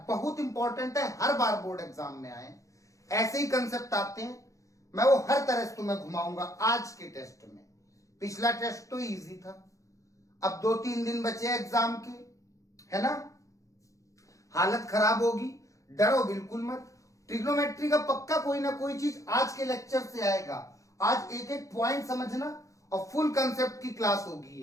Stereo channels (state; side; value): late; right; 0.16 ms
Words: बहुत इंपॉर्टेंट है, हर बार बोर्ड एग्जाम में आए ऐसे ही कंसेप्ट आते हैं। मैं वो हर तरह से तुम्हें घुमाऊंगा आज के टेस्ट में। पिछला टेस्ट तो इजी था, अब 2-3 दिन बचे एग्जाम के, है ना। हालत खराब होगी, डरो बिल्कुल मत। ट्रिग्नोमेट्री का पक्का कोई ना कोई चीज आज के लेक्चर से आएगा। आज एक एक पॉइंट समझना और फुल कंसेप्ट की क्लास होगी।